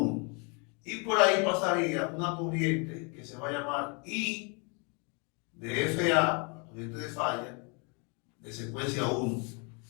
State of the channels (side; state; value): right; quieter; 34.4 dB